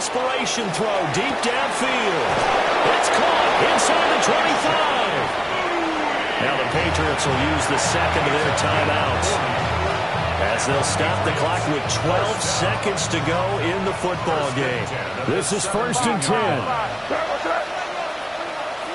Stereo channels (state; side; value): identical; both; correlation 1.00